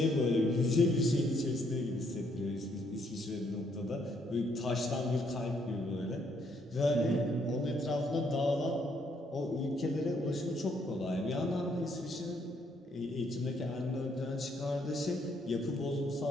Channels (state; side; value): normal; both; correlation 0.71